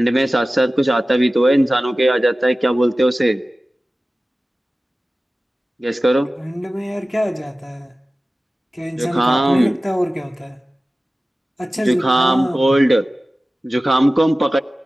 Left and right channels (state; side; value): normal; both; correlation 0.96